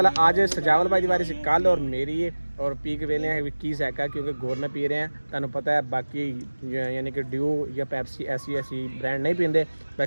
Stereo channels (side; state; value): both; inverted; correlation -1.00